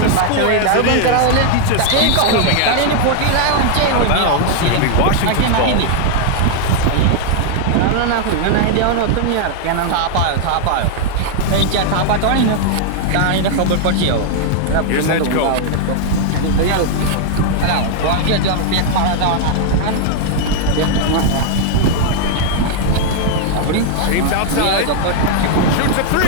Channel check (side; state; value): both; different; correlation 0.00